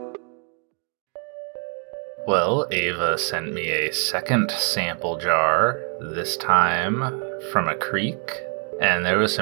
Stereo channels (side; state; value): left; quieter; 39.7 dB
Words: Well, Ava sent me a second sample jar, this time from a creek, and there was